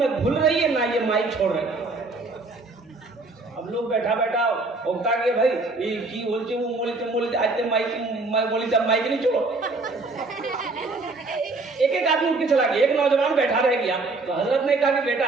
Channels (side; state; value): left; quieter; 3.5 dB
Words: घुल रही है, ना ये माइक छोड़ रहे। अब लोग बैठा बैठा होता गया, भाई ये की बोलते वो बोलते आज ते माइक माइक नहीं छोड़ो। एक आदमी उठ के चला गया, एक नौजवान बैठा रह गया। तो हजरत ने कहा कि बेटा